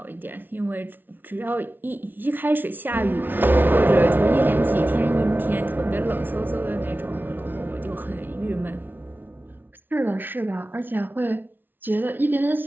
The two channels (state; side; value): late; left; 0.094 ms